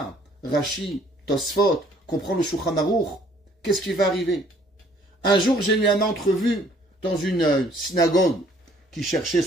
Rashi, Tosfot, comprendre le Shulchan Aruch, qu'est-ce qui va arriver? Un jour, j'ai eu une entrevue dans une synagogue qui cherchait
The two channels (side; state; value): both; normal; correlation 0.60